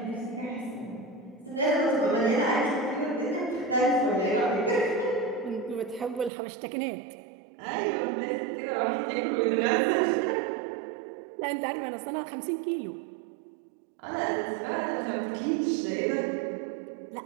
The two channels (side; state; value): left; drops out; at 6.3 s